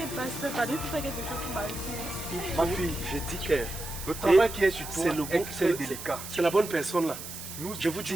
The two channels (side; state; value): right; noise; hiss, 10 dB below the sound